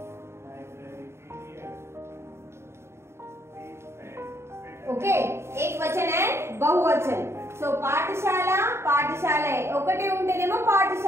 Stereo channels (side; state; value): left; late; 0.13 ms